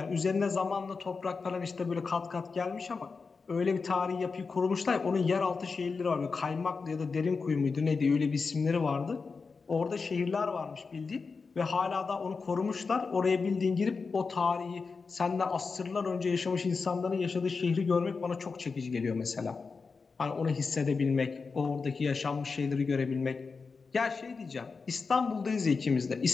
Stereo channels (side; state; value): right; quieter; 4.7 dB